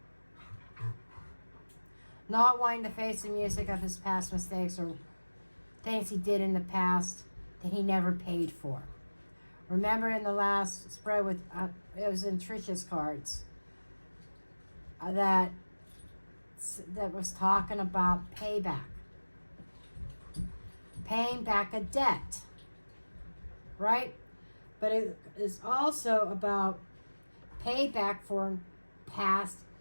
Not wanting to face the music of his past mistakes or things he did in the past that he never paid for. Remember in the last spread with, it was in Trisha's cards, that was talking about payback. Paying back a debt. Right? But it is also about payback for past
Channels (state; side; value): inverted; both; correlation -1.00